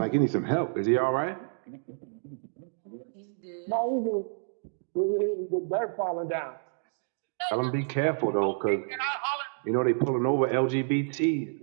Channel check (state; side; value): silent; left; digital silence